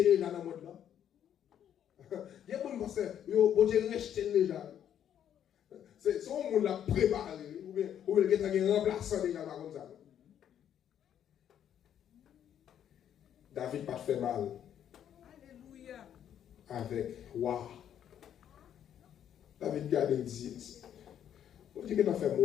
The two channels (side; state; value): right; quieter; 9.8 dB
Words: les gens dans le monde là? Il y a des gens qui pensent, bon Dieu rejeter les gens. C'est son monde l'a préparé, ou bien il y a un remplaçant déjà comme ça. David pas fait mal. Alléluia. Avec roi. David garde et dit, on dit que tu as fait